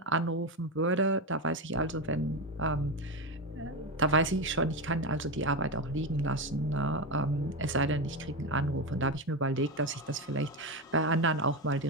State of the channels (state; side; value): normal; both; correlation 0.14